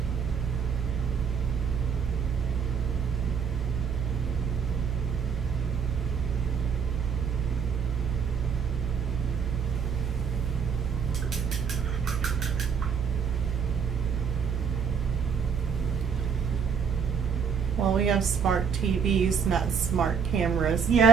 Well, we have smart TVs, not smart cameras.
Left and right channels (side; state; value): left; quieter; 6.6 dB